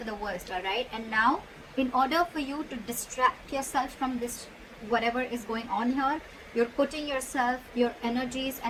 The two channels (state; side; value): identical; both; correlation 1.00